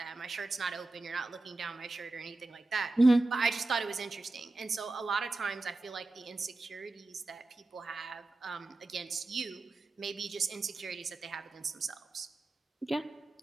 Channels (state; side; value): quieter; left; 3.0 dB